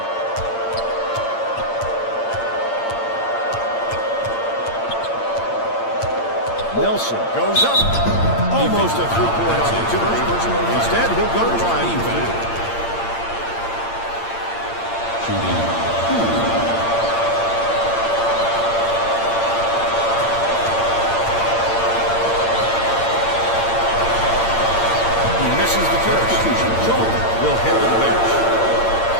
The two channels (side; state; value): right; late; 8.8 ms